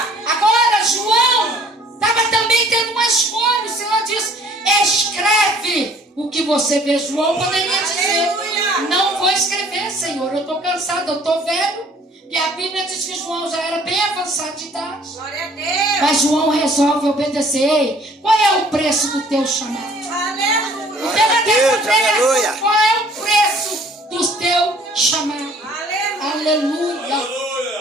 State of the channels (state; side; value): normal; both; correlation 0.56